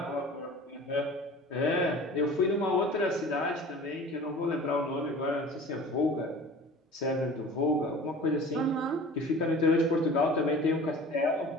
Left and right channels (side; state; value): both; normal; correlation 0.42